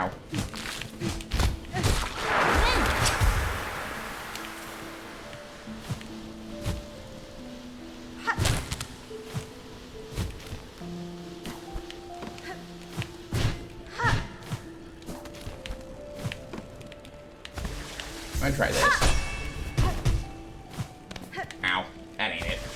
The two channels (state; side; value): identical; both; correlation 1.00